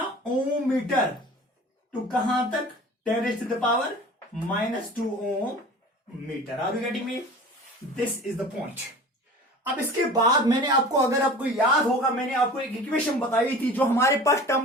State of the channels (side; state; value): both; normal; correlation 0.40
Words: ओम मीटर टू कहां तक, 10⁻⁻² ohm metre. Are you getting me? This is the point. अब इसके बाद मैंने आपको, अगर आपको याद होगा, मैंने आपको एक इक्वेशन बताई थी, जो हमारे पास